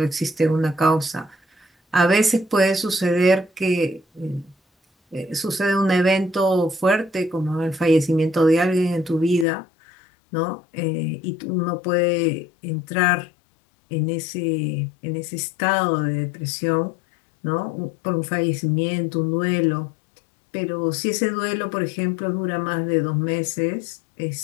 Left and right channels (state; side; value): drops out; right; at 9.5 s